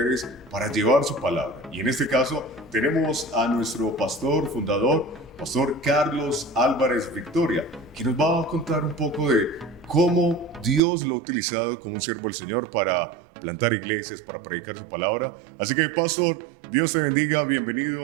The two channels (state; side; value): drops out; left; at 10.8 s